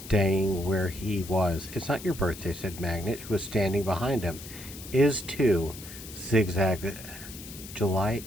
where he was. "It's not your birthday," said Magnet, who was standing behind him. "Is too." Zigzag. July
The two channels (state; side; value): noise; left; hiss, 14 dB below the sound